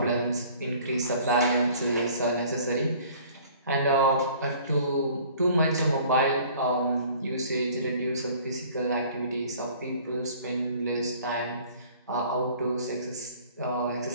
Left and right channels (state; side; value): inverted; both; correlation -0.52